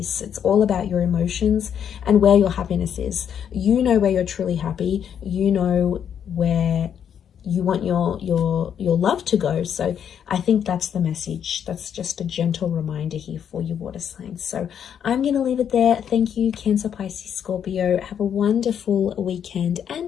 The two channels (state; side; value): quieter; right; 8.6 dB